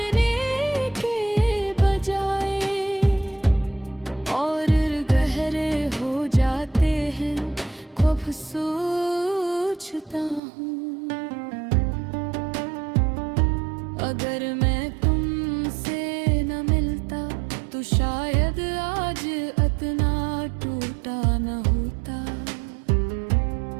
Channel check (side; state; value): left; drops out; at 10.4 s